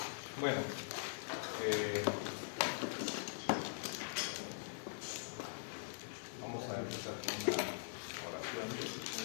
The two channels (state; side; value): silent; right; digital silence